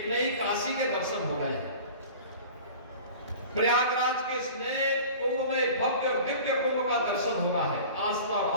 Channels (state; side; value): inverted; both; correlation -0.40